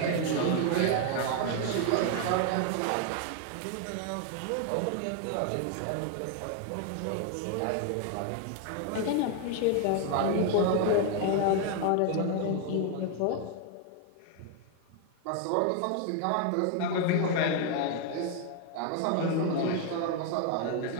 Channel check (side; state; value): both; different; correlation 0.00